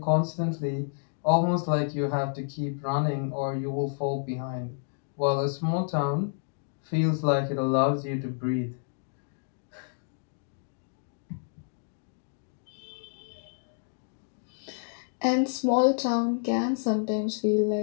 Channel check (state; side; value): silent; right; digital silence